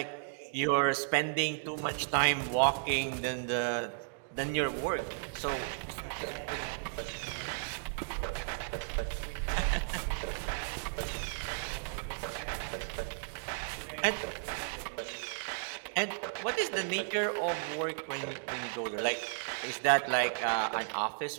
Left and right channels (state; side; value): silent; left; digital silence